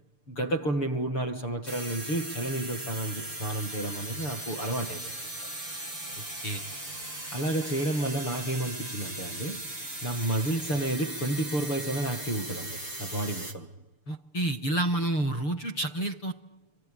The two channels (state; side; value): late; right; 6.8 ms